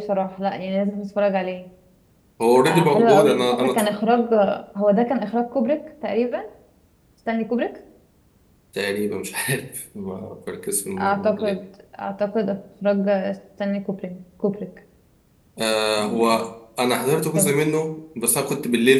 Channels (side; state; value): both; identical; correlation 1.00